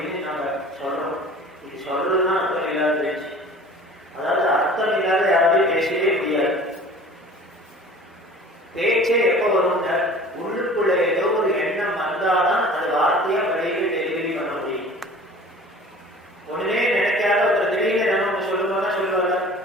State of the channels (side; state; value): both; normal; correlation 0.44